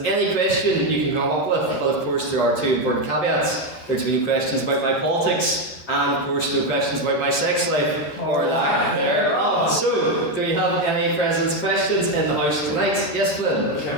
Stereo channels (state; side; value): late; right; 13 ms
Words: any question you can come up with. But of course, there are 2 important caveats. There are to be no questions about my politics, and of course, no questions about my sex life or lack thereof. So, do we have any President's questions in the House tonight? Yes, Flynn? We